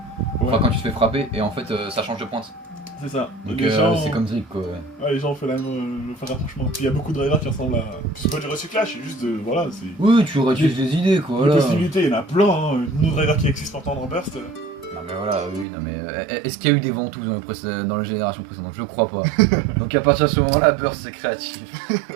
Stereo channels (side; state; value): left; drops out; at 15.7 s